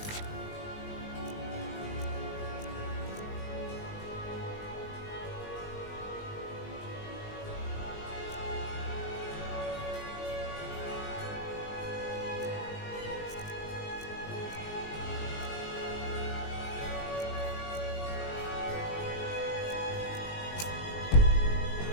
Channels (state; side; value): late; right; 19 ms